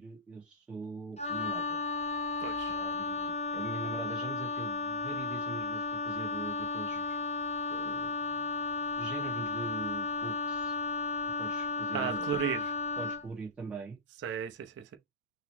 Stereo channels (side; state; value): both; normal; correlation -0.18